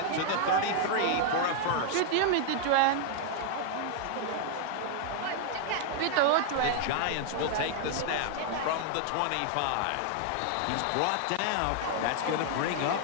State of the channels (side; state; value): both; different; correlation 0.00